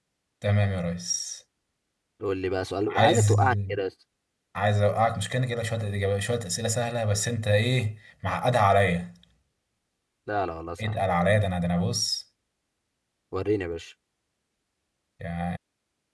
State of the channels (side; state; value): both; identical; correlation 1.00